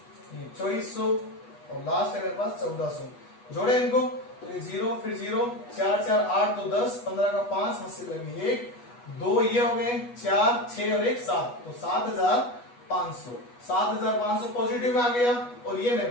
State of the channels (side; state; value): right; late; 8.2 ms